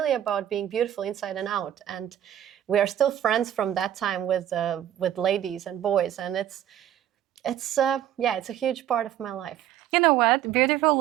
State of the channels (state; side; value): quieter; left; 11.2 dB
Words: about being beautiful inside and out. And we are still friends from that time with ladies and boys. And it's a huge part of my life. You know what? Beautiful